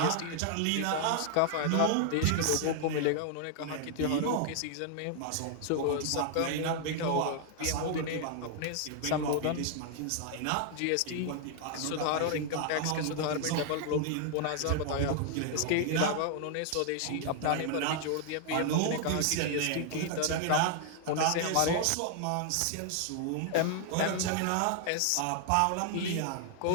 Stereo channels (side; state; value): both; different; correlation 0.00